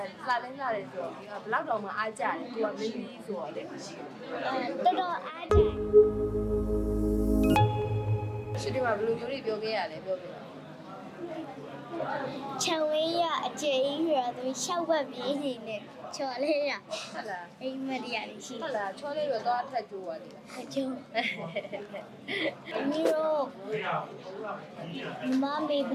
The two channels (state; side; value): identical; both; correlation 1.00